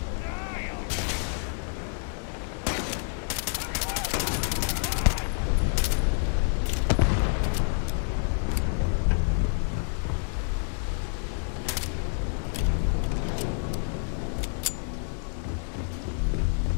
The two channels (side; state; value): right; silent; 59 dB below the other